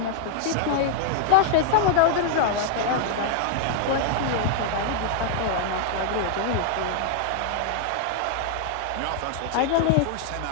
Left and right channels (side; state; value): both; different; correlation -0.01